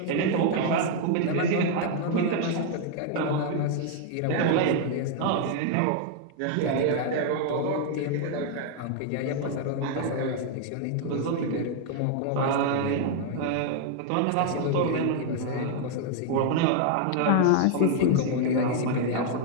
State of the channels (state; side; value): different; both; correlation 0.00